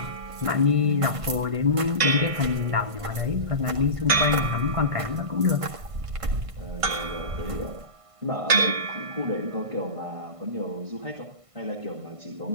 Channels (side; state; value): left; late; 1.5 ms